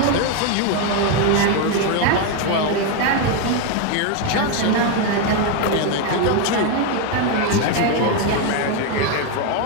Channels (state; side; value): different; both; correlation 0.02